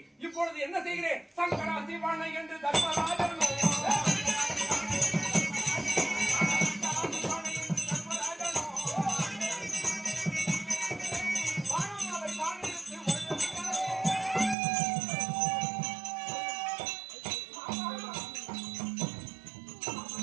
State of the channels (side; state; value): left; drops out; at 14.6 s